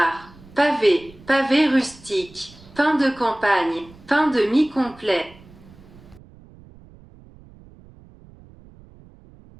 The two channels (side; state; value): right; noise; rumble, 23 dB below the sound